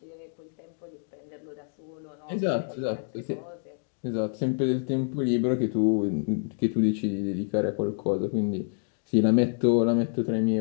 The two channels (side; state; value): right; silent; 60 dB below the other